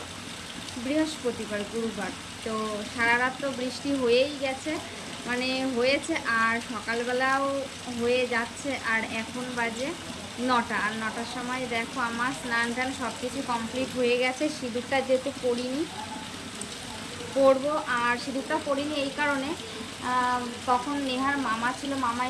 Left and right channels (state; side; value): identical; both; correlation 1.00